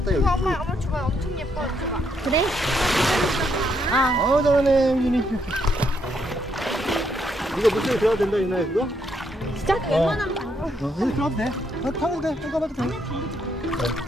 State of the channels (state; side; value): normal; both; correlation 0.75